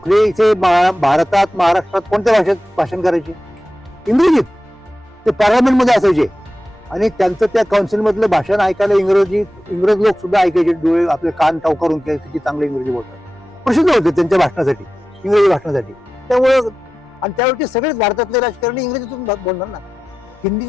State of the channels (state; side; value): normal; both; correlation 0.93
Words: इथे भारतात, महाराष्ट्रात कोणत्या भाषेत भाषण करायचे, इंग्रजीत. ते पार्लमेंटमध्ये असायचे आणि त्यांचं त्या काउन्सिलमधलं भाषण ऐकायला इंग्रज लोक सुद्धा ऐकायचे, डोळे आपले कान टाव करून किती चांगले इंग्रजी बोलतात, प्रसिद्ध होते त्यांच्या भाषणासाठी, इंग्रजी भाषणासाठी. त्यामुळं आणि त्यावेळी सगळेच भारतातले राजकारणी इंग्रजीतून बोलणार ना,